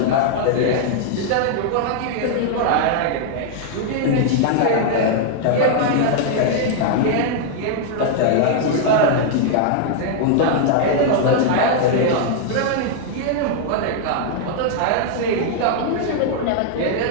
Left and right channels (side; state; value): both; different; correlation -0.01